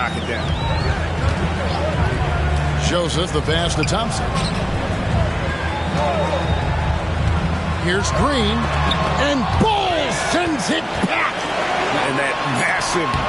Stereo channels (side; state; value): both; identical; correlation 1.00